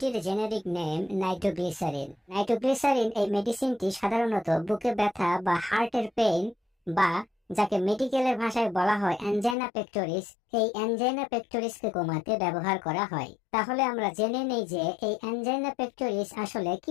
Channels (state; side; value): drops out; right; at 9.6 s